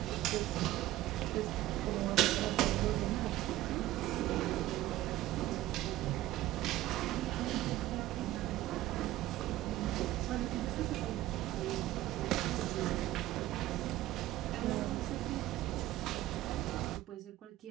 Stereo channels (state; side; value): quieter; left; 15.5 dB